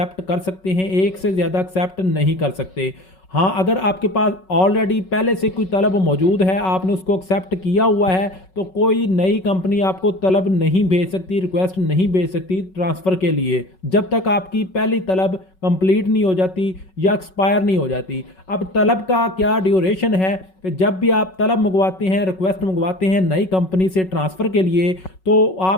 कर सकते हैं, एक से ज़्यादा एक्सेप्ट नहीं कर सकते। हाँ, अगर आपके पास ऑलरेडी पहले से कोई तलब मौजूद है, आपने उसको एक्सेप्ट किया हुआ है, तो कोई नई कंपनी आपको तलब नहीं भेज सकती, रिक्वेस्ट नहीं भेज सकती ट्रांसफ़र के लिए, जब तक आपकी पहली तलब कंप्लीट नहीं हो जाती या एक्सपायर नहीं हो जाती। अब तलब का क्या ड्यूरेशन है कि जब भी आप तलब मंगवाते हैं, रिक्वेस्ट मंगवाते हैं नई कंपनी से ट्रांसफ़र के लिए, तो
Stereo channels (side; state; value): right; late; 5.4 ms